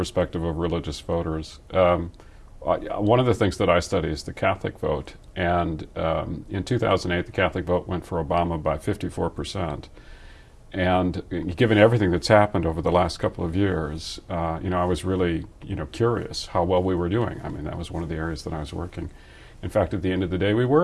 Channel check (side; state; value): both; identical; correlation 1.00